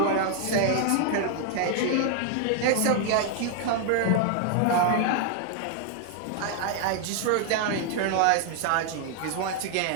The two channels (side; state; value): both; different; correlation 0.00